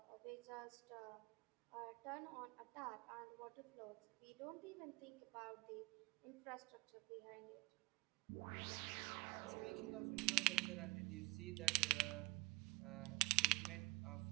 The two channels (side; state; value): left; quieter; 25.7 dB